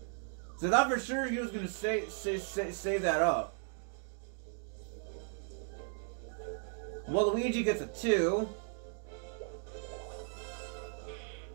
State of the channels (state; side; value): silent; left; 54 dB below the other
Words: So I thought for sure he was gonna save that up. Well, Luigi gets a 2.